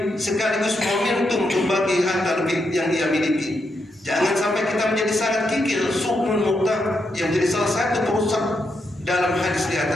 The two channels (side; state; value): both; normal; correlation 0.82